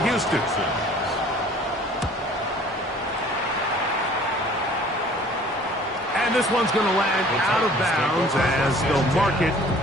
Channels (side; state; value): both; normal; correlation 0.51